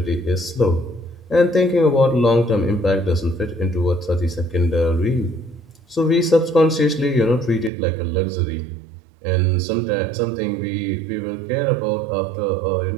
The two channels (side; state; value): left; drops out; at 7.7 s